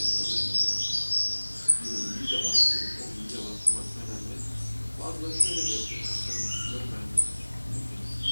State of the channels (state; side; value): inverted; both; correlation -1.00